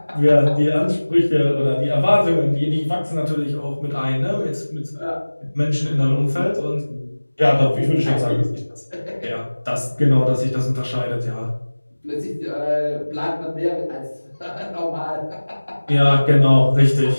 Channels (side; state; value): both; inverted; correlation -1.00